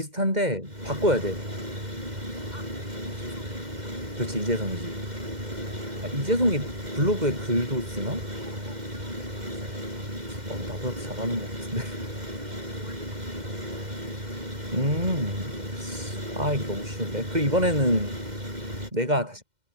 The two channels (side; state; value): left; late; 2.1 ms